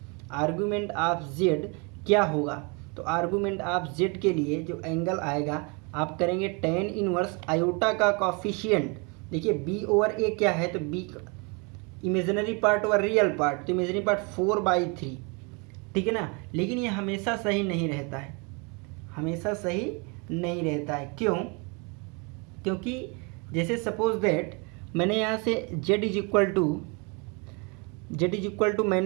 argument of z क्या होगा? तो आर्गुमेंट ऑफ z के लिए जो एंगल आएगा आप करेंगे tan इनवर्स आयोटा का कॉफिशिएंट। देखिए b ओवर a क्या है, तो b imaginary part over real part, तो इमेजिनरी पार्ट 4/3, ठीक है ना। लेकिन ये हमेशा सही नहीं रहता है, हमेशा सही नहीं रहता है। क्यों? क्योंकि जैसे सपोज दैट मैंने यहाँ से z इज इक्वल टू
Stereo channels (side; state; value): left; quieter; 31.8 dB